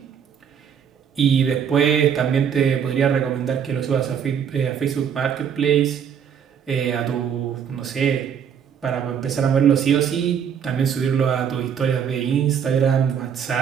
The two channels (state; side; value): quieter; left; 7.9 dB